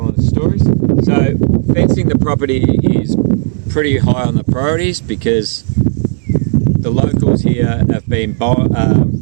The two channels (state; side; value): silent; left; digital silence